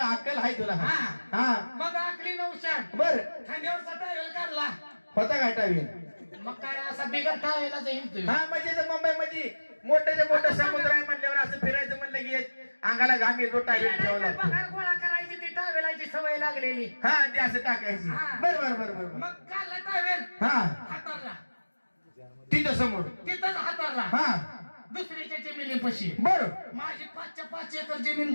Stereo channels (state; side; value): inverted; both; correlation -1.00